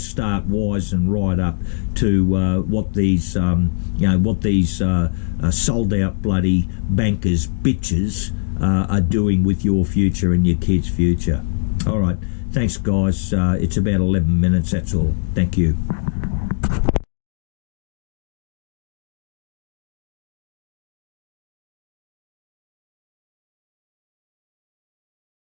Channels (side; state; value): right; silent; digital silence